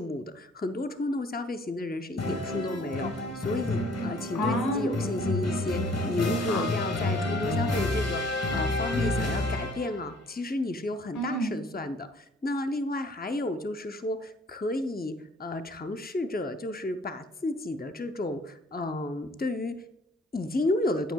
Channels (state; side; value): normal; both; correlation 0.58